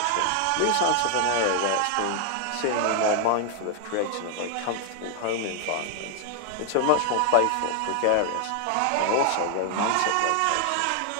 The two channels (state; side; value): different; both; correlation 0.00